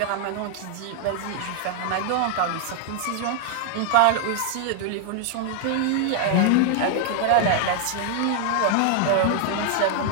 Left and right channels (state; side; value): different; both; correlation 0.00